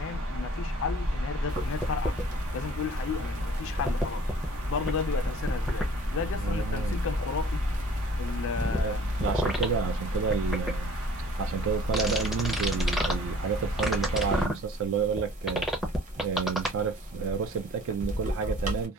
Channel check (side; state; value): both; normal; correlation 0.51